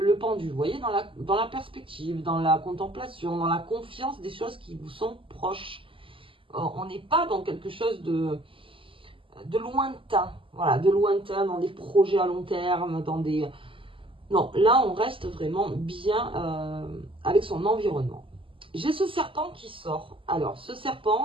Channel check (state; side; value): late; left; 0.25 ms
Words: pendu, vous voyez, dans la perspective, dans la contemplation, dans la confiance des choses qui vous sont proches. On n'est pas dans quelque chose de lointain, voilà, de lointain, dans des projets à long terme, dans des Non, là, on reste vraiment bien avec son environnement. J'ai ce serpent qui sort. Alors, ce